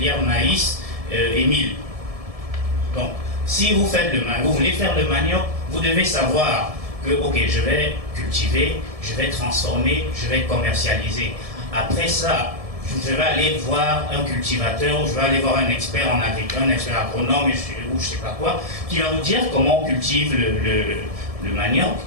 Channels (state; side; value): late; left; 1.7 ms